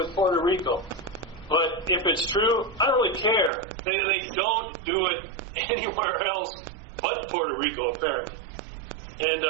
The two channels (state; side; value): drops out; left; at 3.5 s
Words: Puerto Rico. But if it's true, I don't really care. They don't do it anywhere else but Puerto Rico, apparently. And